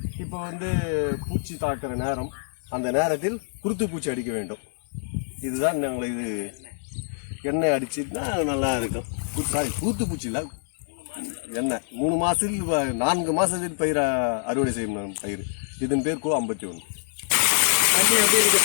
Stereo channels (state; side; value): silent; right; 60 dB below the other